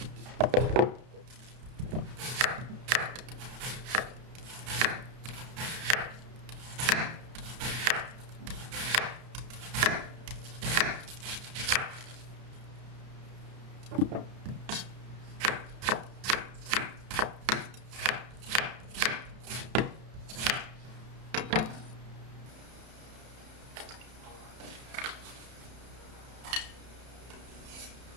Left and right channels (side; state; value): left; late; 31 ms